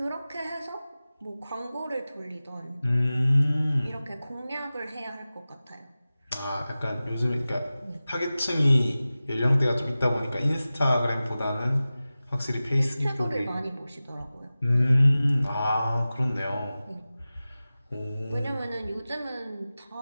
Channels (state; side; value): inverted; both; correlation -0.96